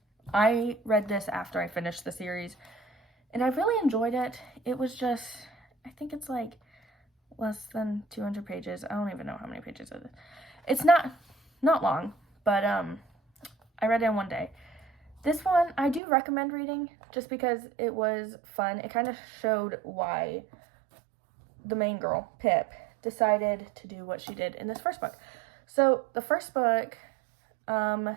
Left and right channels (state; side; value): drops out; left; at 16.0 s